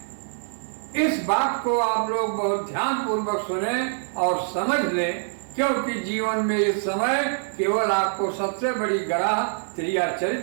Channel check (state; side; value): silent; left; digital silence